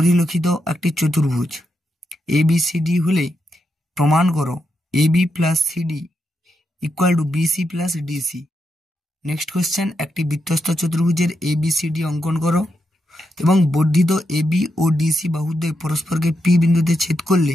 একটি চতুর্ভুজ ABCD হলে প্রমাণ করো AB plus CD equal to BC plus DC. Next question, একটি বৃত্তস্থ চতুর্ভুজের ABCD অঙ্কন করো এবং বর্ধিত AB ও DC বাহুদ্বয় পরস্পরকে P বিন্দুতে ছেদ করলে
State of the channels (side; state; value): both; normal; correlation 0.84